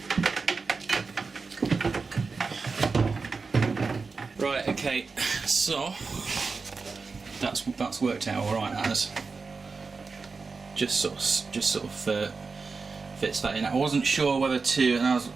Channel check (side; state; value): left; quieter; 4.5 dB